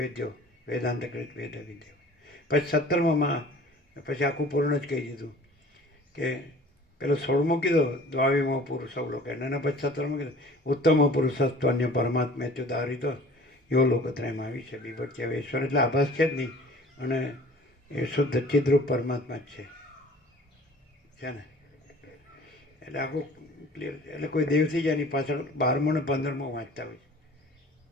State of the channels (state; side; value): normal; both; correlation 0.47